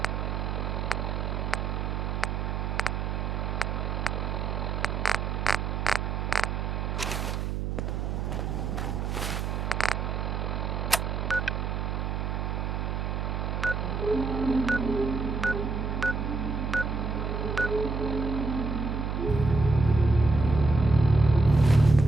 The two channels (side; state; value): right; noise; hum, 1 dB below the sound